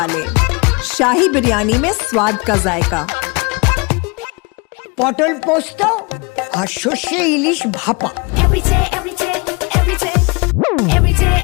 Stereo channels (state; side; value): quieter; right; 29.2 dB